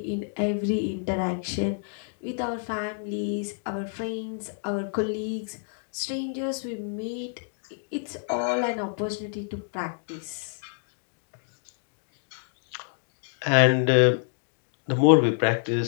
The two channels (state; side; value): silent; right; digital silence